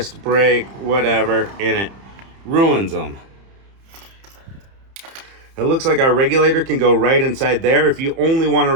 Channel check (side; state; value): left; late; 30 ms